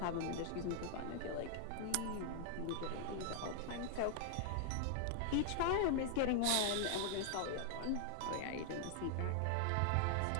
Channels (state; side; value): different; both; correlation 0.00